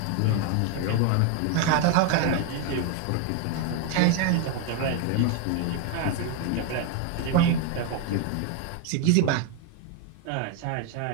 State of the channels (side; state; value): both; different; correlation 0.01